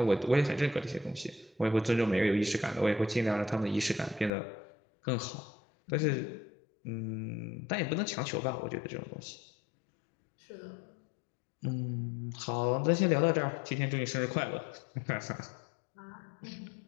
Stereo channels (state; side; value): drops out; right; at 4.3 s